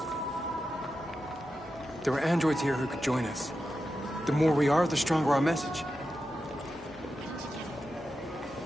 There are androids here who could join us. The more we are, the stronger our message.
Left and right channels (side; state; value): both; normal; correlation 0.90